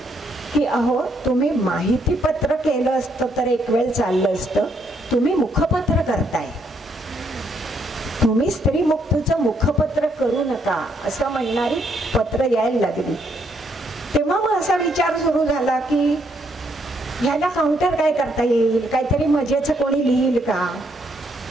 की अहो तुम्ही माहिती पत्र केलं असतं तर एक वेळ चाललं असतं, तुम्ही मुखपत्र करताय, तुम्ही स्त्री मुक्तीचं मुखपत्र करू नका असं म्हणणारी पत्र यायला लागली. तेव्हा मग असा विचार सुरू झाला की ह्याला काउंटर काय करता येईल, काहीतरी मजेचं कोणी लिहिल का.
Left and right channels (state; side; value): normal; both; correlation 0.73